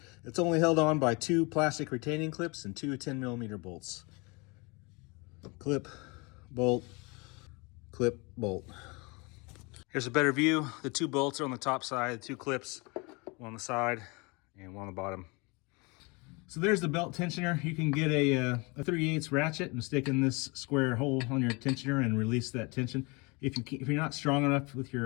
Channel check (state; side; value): quieter; right; 28.3 dB